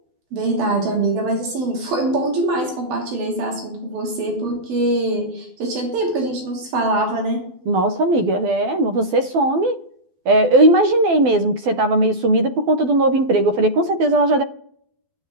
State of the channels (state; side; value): late; left; 12 ms